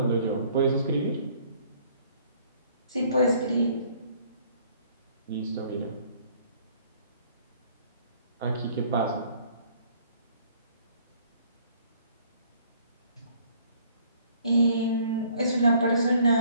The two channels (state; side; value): inverted; both; correlation -0.59